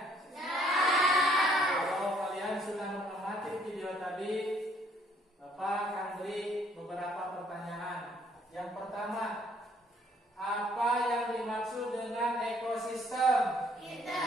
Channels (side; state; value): both; normal; correlation 0.64